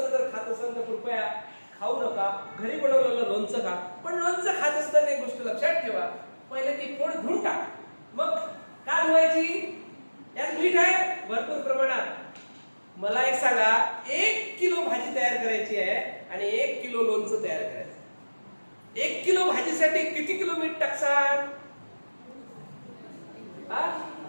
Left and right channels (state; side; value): inverted; both; correlation -1.00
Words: जर खात असेल तर कृपया खाऊ नका, घरी बनवलेलं लोणचं खा. पण लोणचं खात असताना एक गोष्ट लक्षात ठेवा, पहिले ती फोड धुवून टाक, मग का धुवायची, यात मीठ आहे भरपूर प्रमाणात. मला एक सांगा, 1 किलो भाजी तयार करायची आहे आणि 1 किलो लोणचं तयार करायचं. 1 किलो भाजीसाठी किती किलो मीठ टाकसाल?